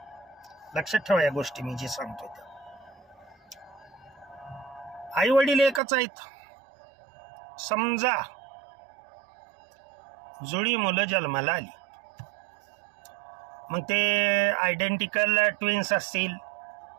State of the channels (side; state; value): left; drops out; at 5.8 s